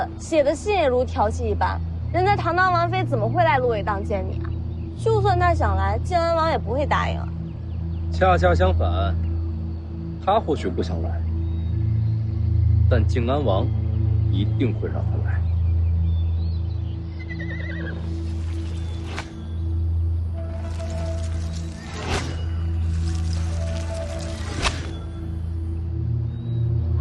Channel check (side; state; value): both; identical; correlation 1.00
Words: 写的信也如调戏一般。人家堂堂王妃怎么会来芦苇荡见你啊？就算他想来，静安王也不会答应啊。恰恰相反，他或许不想来，但静安王一定会让他来。